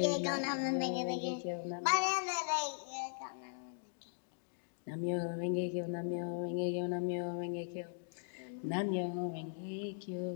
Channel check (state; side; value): silent; right; digital silence